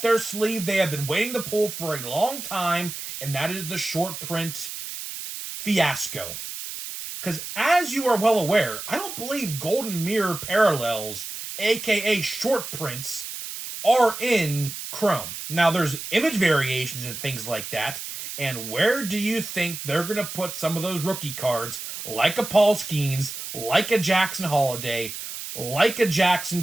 their sleeve they have been waiting to pull for a long time, and that is the short print fiasco. Because as you are well aware, I don't believe Golden Mirror parallels, aka short prints, are in Chrome. Now, there's image variations and things like that. And where do you think they're going to put some of those rookie cards, like a Paul Skeens, like a Jackson Holiday, like a Jackson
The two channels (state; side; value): noise; right; hiss, 8 dB below the sound